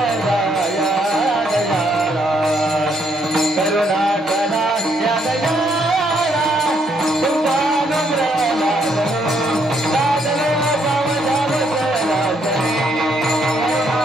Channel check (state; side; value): normal; both; correlation 0.72